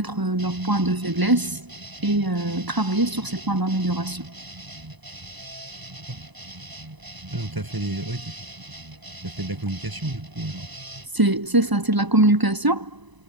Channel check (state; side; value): late; left; 1.0 ms